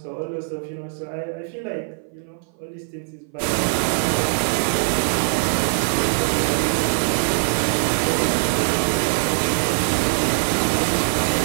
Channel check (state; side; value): silent; left; 58 dB below the other